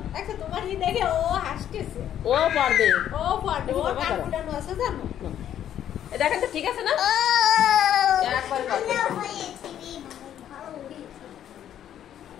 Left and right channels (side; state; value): right; quieter; 10.5 dB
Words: দেখো তোমার ই দেখে ও হাসতেছে। ও পারবে। ও পারবে। ও কান ফুটানো আছে জানো? এই দেখেন তো ঠিক আছে না? একবার পারবে।